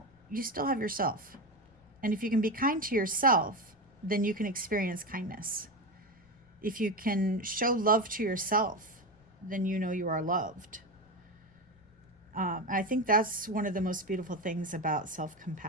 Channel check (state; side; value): noise; left; rumble, 30 dB below the sound